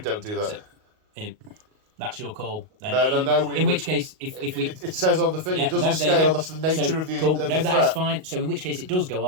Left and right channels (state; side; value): late; left; 38 ms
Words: do that. So, that's your call. Then No. In which case, if we, it says on the thing, it doesn't scale. That's the nature of the cool. of No, the that threat. is fine. So in which case, it does go